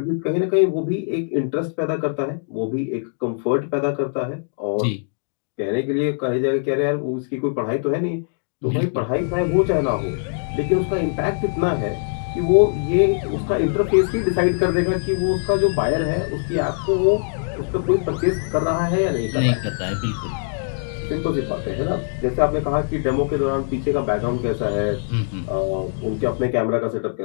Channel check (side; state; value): right; silent; digital silence